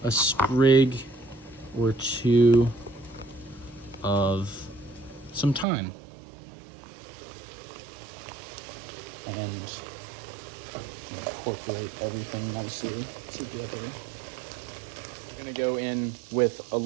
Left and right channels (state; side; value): drops out; left; at 5.7 s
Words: a sprig or 2 of some thyme. And incorporate everything nicely together. We're gonna go in with a